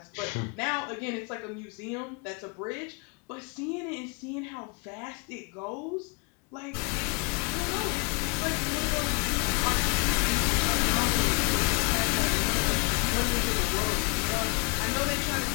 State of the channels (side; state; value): right; quieter; 32.3 dB